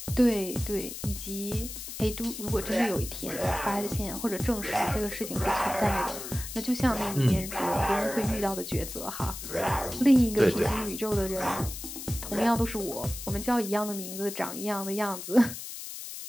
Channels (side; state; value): left; noise; hiss, 9 dB below the sound